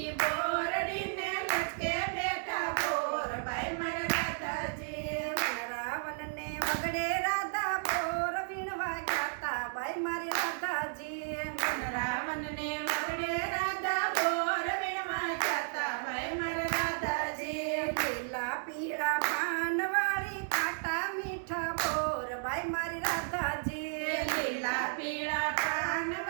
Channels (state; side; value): silent; left; 56 dB below the other